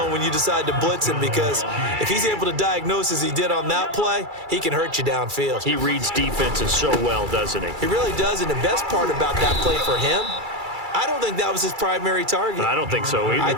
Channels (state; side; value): late; left; 2.3 ms